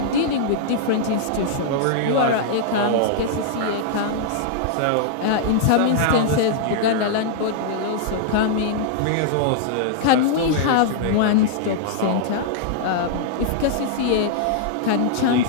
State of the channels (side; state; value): both; different; correlation -0.01